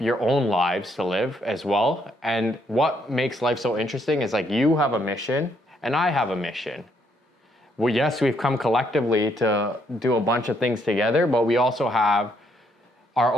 own lives to live as well. And what makes life so interesting is like you have a mission and I have a mission. Well, yes, we've come collectively to do a bunch of things together, but we also have our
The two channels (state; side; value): normal; both; correlation 0.72